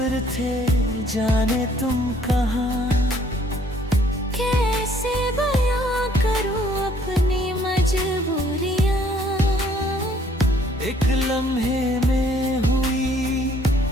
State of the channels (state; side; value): normal; both; correlation 0.62